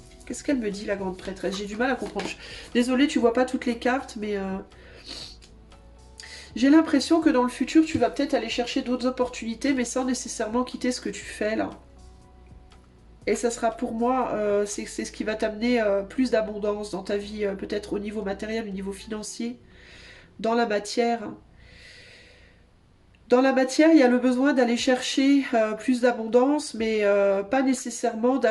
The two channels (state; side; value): identical; both; correlation 1.00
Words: Qu'est-ce qu'elle me dit, la grande prêtresse? J'ai du mal à comprendre. Désolée, tu vois pas toutes les cartes, mais... j'ai l'impression que dans le futur, tu vas peut-être aller chercher d'autres opportunités, mais sans nécessairement quitter ce que tu fais, là. Et ça sera pour moi, c'est ce qui va t'amener plus d'abondance dans ta vie, peut-être au niveau matériel, au niveau financier, dans la matière. Dans la matière, il y a le besoin d'aller chercher plus d'abondance, mais pas nécessairement